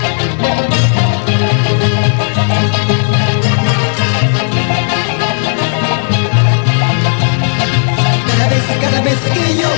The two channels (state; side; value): silent; right; digital silence